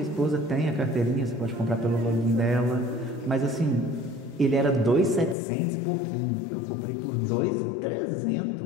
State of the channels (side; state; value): right; drops out; at 5.4 s